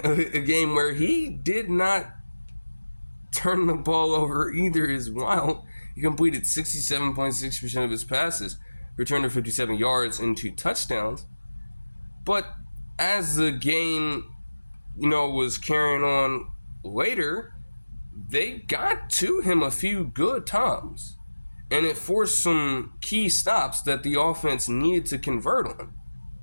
a game where he did not turn the ball over either is wild. He completed 67.6% of his passes, returned for 57 yards and 2 touchdowns. But as the game, was carrying on later, they got to him a few good times. And it forced some key stops that the offense needed to convert on.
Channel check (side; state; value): both; inverted; correlation -1.00